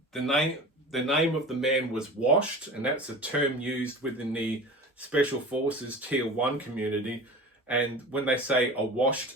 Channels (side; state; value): both; normal; correlation 0.36